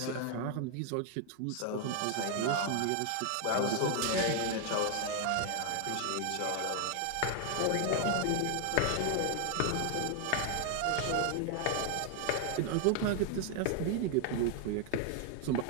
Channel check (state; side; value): different; both; correlation 0.00